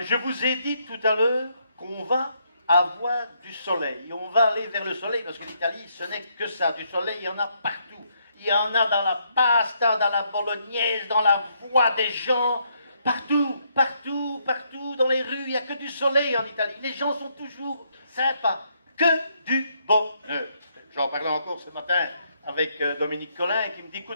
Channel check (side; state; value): both; inverted; correlation -0.74